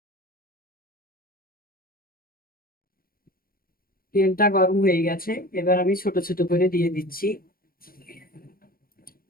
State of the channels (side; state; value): right; late; 0.42 ms